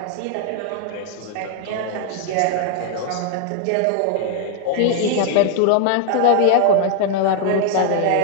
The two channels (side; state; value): both; different; correlation 0.00